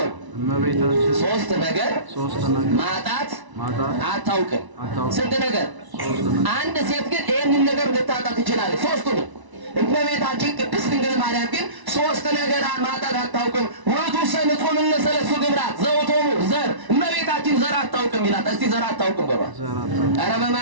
ሶስት ነገር ማጣት አታውቅም። ስንት ነገር? አንድ ሴት ግን ይሄንን ነገር ልታጣት ትችላለች። ሶስቱንም እመቤታችን ቅድስት ድንግል ማርያም ግን ሶስት ነገር ማጣት አታውቅም። ወቱ ሰንጾም እነሰለሱ ግብራት ዘውቶሙ ዘር እመቤታችን ዘር አታውቅም ይላል። እስቲ ዘር አታውቅም በባ ኧረ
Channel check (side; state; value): left; late; 1.0 ms